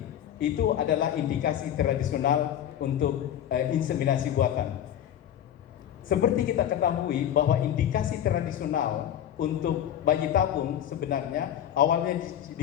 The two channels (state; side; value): quieter; right; 10.5 dB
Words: Itu adalah indikasi tradisional untuk inseminasi buatan. Seperti kita ketahui bahwa indikasi tradisional untuk bayi tabung sebenarnya awalnya